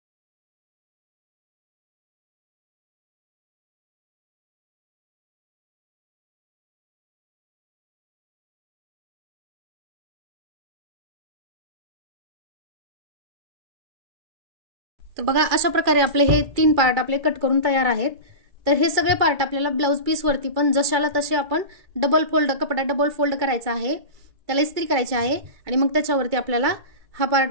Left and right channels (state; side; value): late; left; 2.3 ms